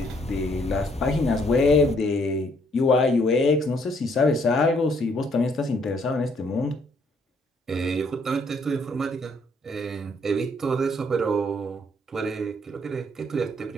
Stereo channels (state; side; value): normal; both; correlation 0.67